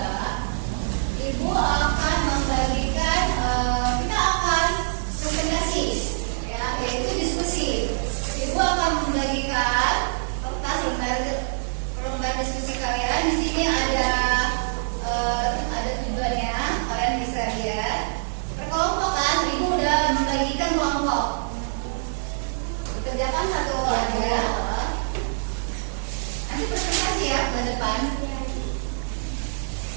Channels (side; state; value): left; silent; 62 dB below the other